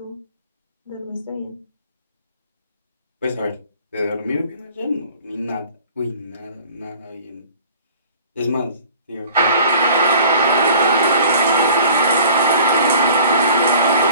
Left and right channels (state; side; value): inverted; both; correlation -0.48